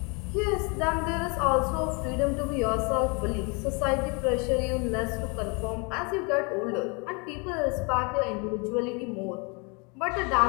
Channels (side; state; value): right; quieter; 31.9 dB